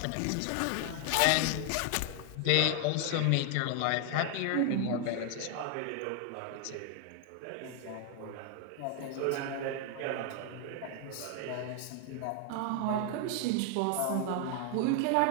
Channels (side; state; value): both; different; correlation 0.00